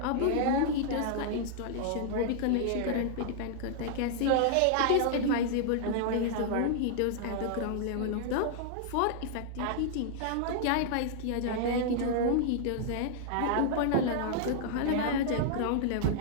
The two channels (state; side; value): different; both; correlation -0.01